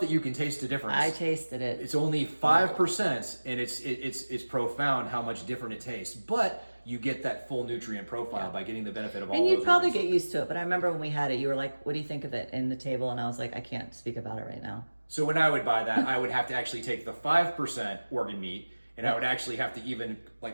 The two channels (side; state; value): both; inverted; correlation -1.00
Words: that you can taste the difference. I tasted it. It's only 5%, and it's profound how much different it tastes. But you get that full nutrient profile by getting the benefit of all. And those you'd probably organs. get used to it. But I remember when we had it, you were like, "What do you think of it?" in the table, and I was like, "I can't speak about it right now." So when I would buy that, I would have to actually take the 5% organ meat, and I would actually have to even